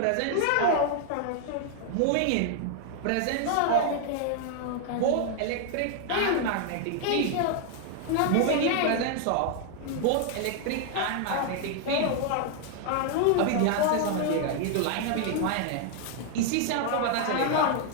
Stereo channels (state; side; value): different; both; correlation 0.00